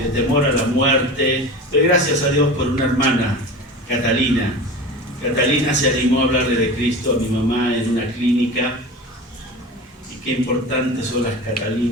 temor a la muerte, pero gracias a Dios por una hermana, Catalina. Catalina se animó a hablarle de Cristo a mi mamá en una clínica, y qué importantes son las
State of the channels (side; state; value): both; normal; correlation 0.32